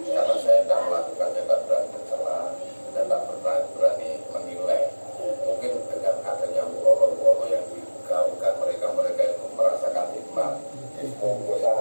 Karena saya tidak melakukannya, tidak berani bersalah dan tidak berani menilai. Mungkin dengan adanya Allah yang digaungkan mereka itu merasakan nikmat. Jadi monggo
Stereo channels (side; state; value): both; inverted; correlation -1.00